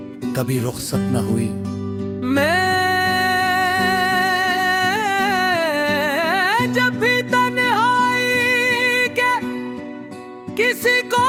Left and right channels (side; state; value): both; identical; correlation 1.00